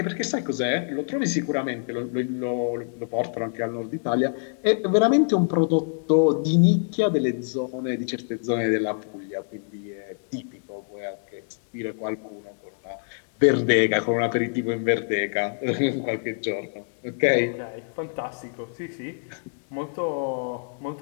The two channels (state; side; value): silent; right; digital silence